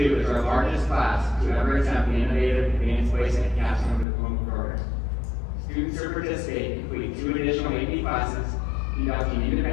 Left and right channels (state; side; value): drops out; right; at 4.0 s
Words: is our largest class to ever attempt the innovative advanced placement capstone diploma program. Students who participate complete 2 additional AP classes, conducting